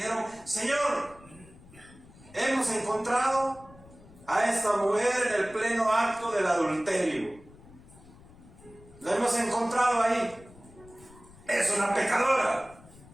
Señor, hemos encontrado a esta mujer en el pleno acto del adulterio. La hemos encontrado ahí. Es una pecadora.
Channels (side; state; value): left; noise; rumble, 23 dB below the sound